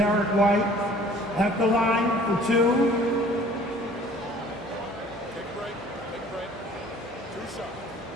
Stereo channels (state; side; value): normal; both; correlation 0.52